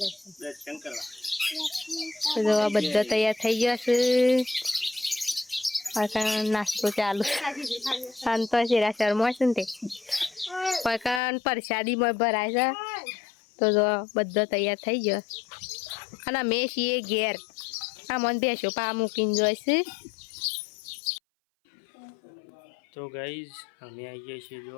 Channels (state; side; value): drops out; right; at 11.2 s